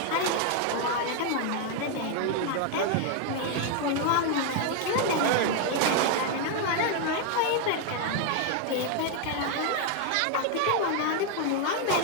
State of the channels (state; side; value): different; both; correlation 0.01